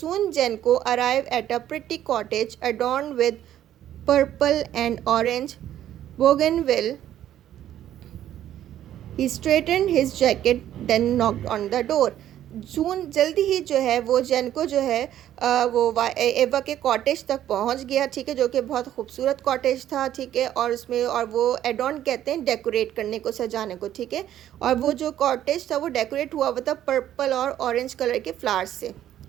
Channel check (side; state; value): left; quieter; 11.7 dB